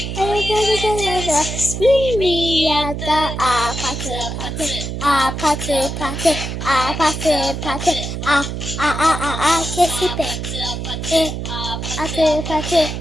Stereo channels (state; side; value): noise; right; hum, 5 dB below the sound